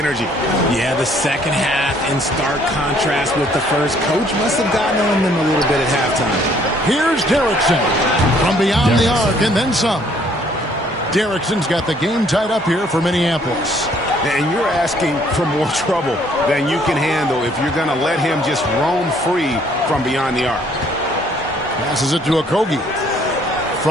Yeah, the second half in stark contrast with the first. Coach must have gotten on them a little bit at halftime. Here's Derrickson from beyond the arc and then some. Derrickson's got the game tied up here for Minneapolis. And you're asking for more trouble than you can handle if you're going to let him just roam free from beyond the arc. Passes it to Okogie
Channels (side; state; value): both; normal; correlation 0.62